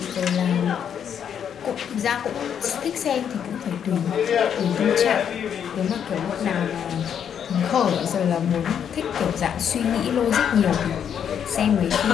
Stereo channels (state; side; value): quieter; right; 8.4 dB